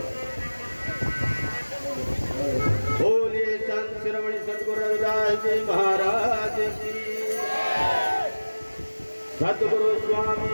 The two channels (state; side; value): inverted; both; correlation -1.00